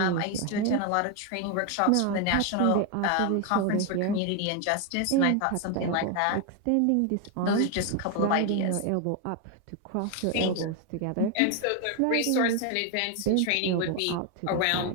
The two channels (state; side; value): different; both; correlation 0.01